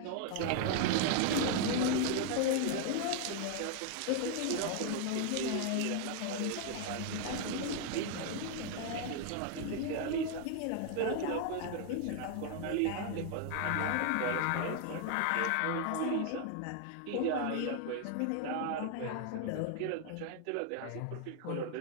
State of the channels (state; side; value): different; both; correlation 0.00